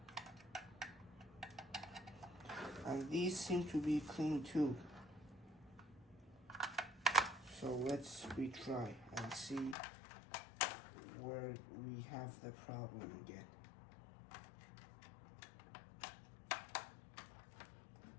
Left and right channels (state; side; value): drops out; right; at 9.8 s